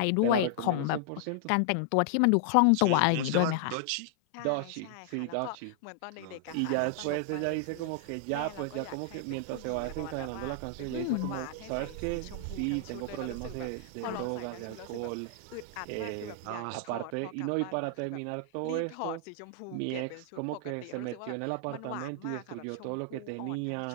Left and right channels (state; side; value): different; both; correlation -0.01